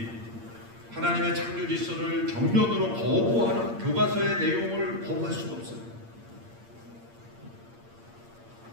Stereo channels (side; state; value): left; late; 8.7 ms